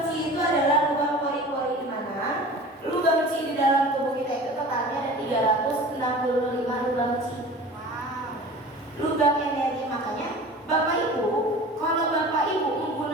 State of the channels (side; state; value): both; normal; correlation 0.39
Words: chi itu adalah lubang pori-pori di mana lubang chi di dalam tubuh kita itu totalnya ada 365 lubang chi. Lubang energi, makanya Bapak Ibu, kalau Bapak Ibu